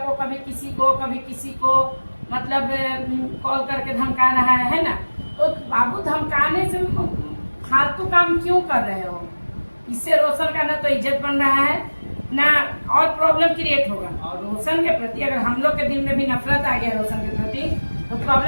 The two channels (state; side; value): inverted; both; correlation -1.00